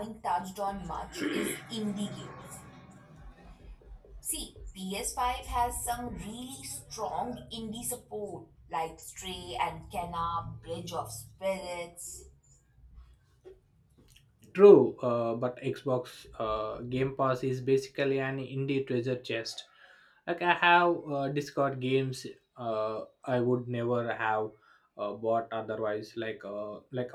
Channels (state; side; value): identical; both; correlation 1.00